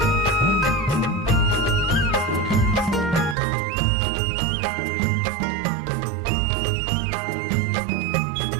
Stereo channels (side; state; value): left; drops out; at 3.4 s